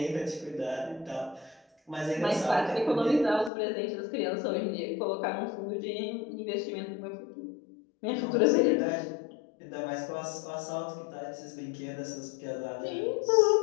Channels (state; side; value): drops out; right; at 3.5 s